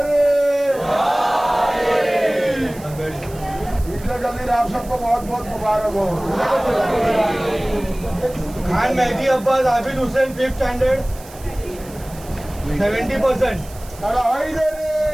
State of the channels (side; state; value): right; noise; hiss, 20 dB below the sound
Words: आप सबको बहुत बहुत मुबारक हो खान मेहदी अब्बास आबिद हुसैन 5th स्टैंडर्ड 70%.